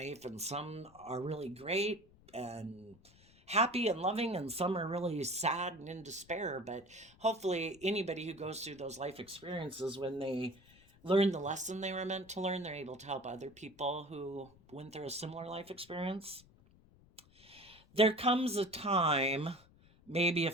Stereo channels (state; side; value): noise; left; rumble, 26 dB below the sound